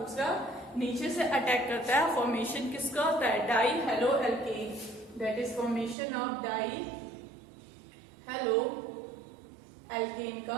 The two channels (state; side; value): drops out; left; at 6.0 s